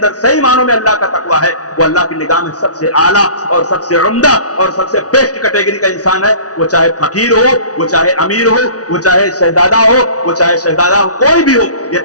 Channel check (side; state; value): right; late; 0.68 ms